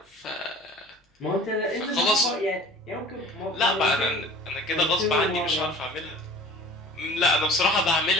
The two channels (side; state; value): both; normal; correlation 0.44